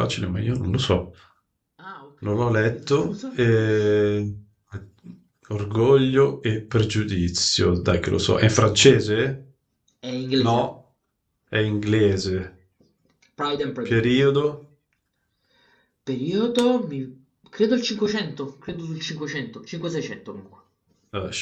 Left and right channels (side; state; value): both; identical; correlation 1.00